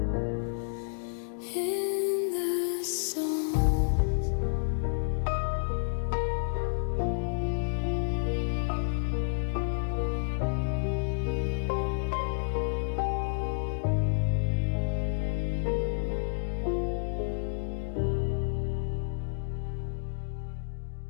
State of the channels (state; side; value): silent; right; digital silence